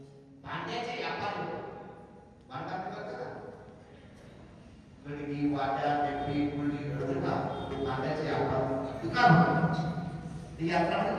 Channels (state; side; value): identical; both; correlation 1.00